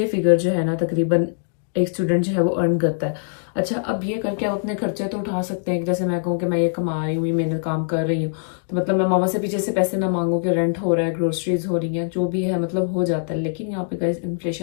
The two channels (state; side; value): silent; right; digital silence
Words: फिगर जो है ना तकरीबन एक स्टूडेंट जो है वो अर्न करता है। अच्छा, अब ये करके आप अपने खर्चे तो उठा सकते हैं। जैसे मैं कहूँ कि मैं ये कमा रही हूँ, ये मेहनत काम कर रही हूँ, तो मतलब मैं मामा से पीछे से पैसे ना मांगू कि रेंट हो रहा है, ग्रोसरीज हो रही हैं, जो भी है मतलब हो जाता है। लेकिन यहाँ पे गाइस